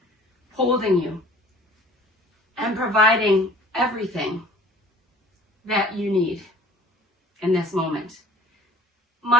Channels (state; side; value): normal; both; correlation 0.49